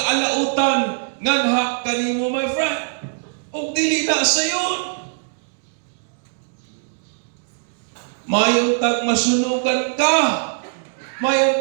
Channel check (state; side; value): silent; left; digital silence